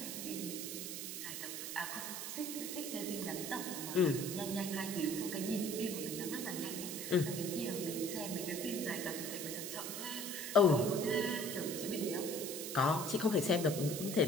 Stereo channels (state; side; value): noise; right; hiss, 5 dB below the sound